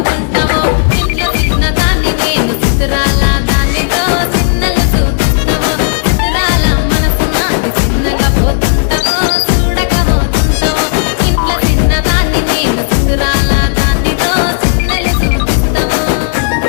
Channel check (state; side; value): silent; right; digital silence